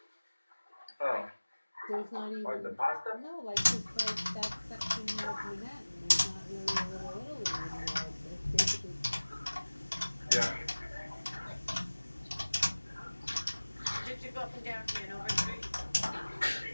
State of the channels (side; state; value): both; inverted; correlation -1.00